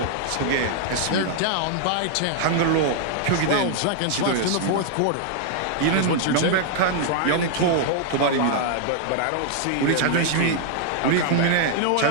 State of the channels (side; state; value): both; different; correlation 0.00